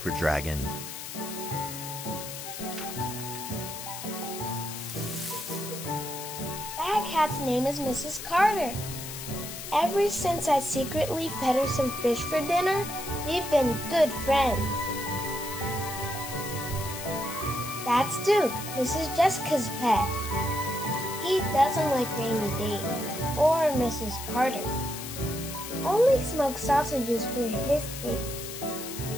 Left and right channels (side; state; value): left; noise; hiss, 9 dB below the sound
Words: dragon. That cat's name is Mrs. Carter. Ever since I secretly fed her some fish for dinner, we've been good friends. That's Duke, Mrs. Jessica's pet. He doesn't like rainy days or Mrs. Carter. Only smoked sausages for his taste.